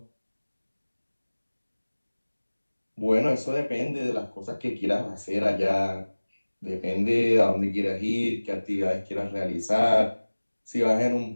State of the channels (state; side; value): inverted; both; correlation -1.00